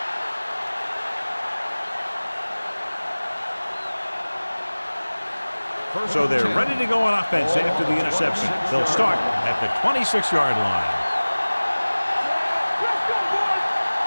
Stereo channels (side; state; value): both; inverted; correlation -1.00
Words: So they're ready to go on offense after the interception. They'll start at the 26-yard line.